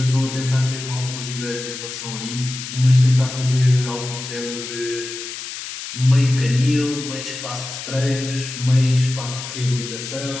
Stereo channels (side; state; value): left; noise; hiss, 9 dB below the sound